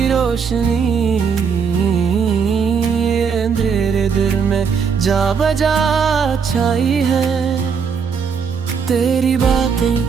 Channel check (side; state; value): left; quieter; 6.2 dB